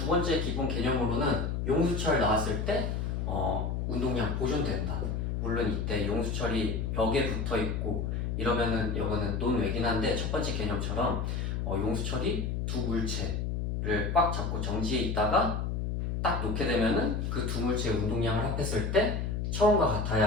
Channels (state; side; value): noise; left; hum, 1 dB below the sound